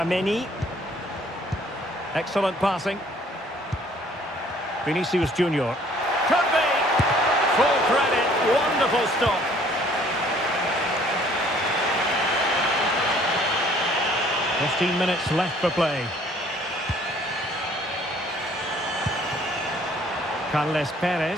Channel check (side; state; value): both; normal; correlation 0.58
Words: Excellent passing. Vinicius Junior. Could be! Full credit. Wonderful stop. "15 minutes left for play. Carles